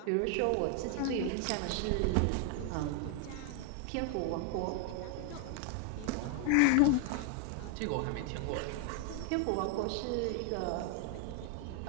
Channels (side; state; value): both; different; correlation 0.00